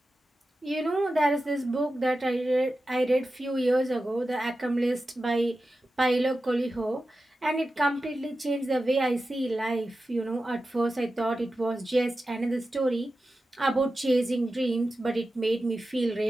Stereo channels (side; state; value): both; normal; correlation 0.93